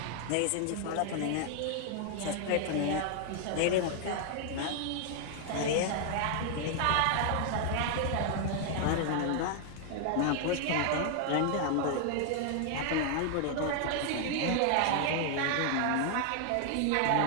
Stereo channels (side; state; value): both; different; correlation 0.00